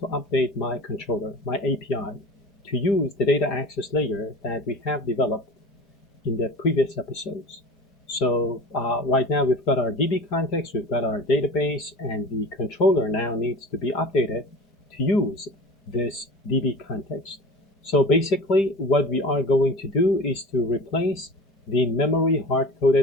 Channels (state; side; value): normal; both; correlation 0.36